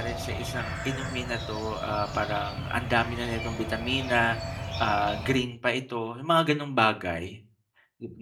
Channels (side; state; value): both; identical; correlation 1.00